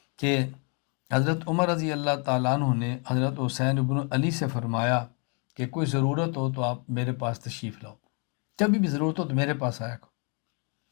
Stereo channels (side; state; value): right; quieter; 36.3 dB